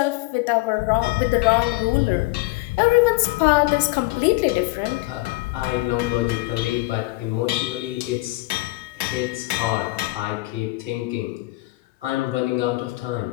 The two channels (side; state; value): right; quieter; 21.8 dB